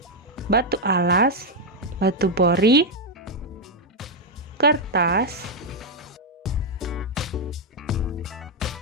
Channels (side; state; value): both; normal; correlation 0.01